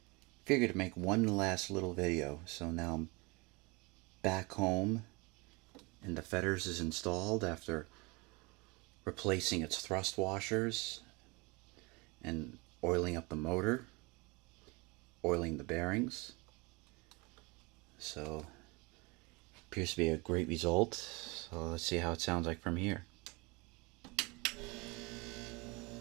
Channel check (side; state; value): left; quieter; 26.9 dB